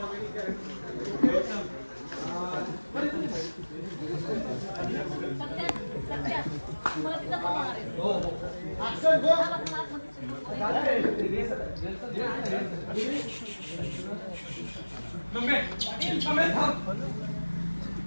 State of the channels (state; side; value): inverted; both; correlation -1.00